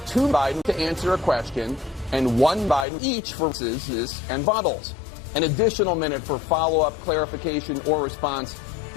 two Biden to answer a question and one Biden each for responses and bottles. An additional minute for follow-up, clarification, or response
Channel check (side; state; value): right; drops out; at 2.9 s